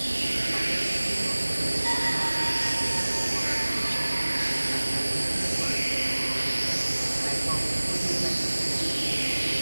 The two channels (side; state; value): both; inverted; correlation -1.00